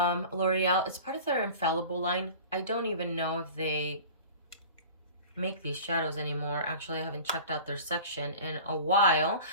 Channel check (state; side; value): inverted; both; correlation -0.40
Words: L'Oreal. It's part of their Infallible line. I don't even know if they make these shadows anymore. Actually, I haven't checked out their section in a while,